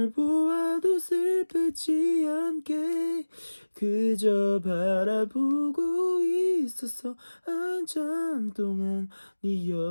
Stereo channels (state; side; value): inverted; both; correlation -1.00